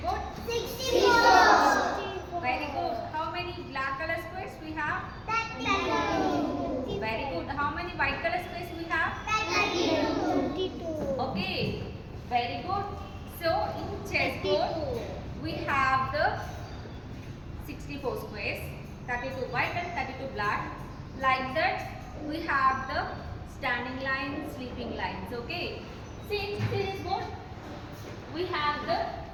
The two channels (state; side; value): identical; both; correlation 1.00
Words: 64. Very good. How many black color squares we have? 32. Very good. How many white color squares we have? 32. Okay, very good. So in chessboard we have the 64 squares, 32 white and 32 black. Like that we have the standing lines, sleeping lines. Okay. See in series board we have the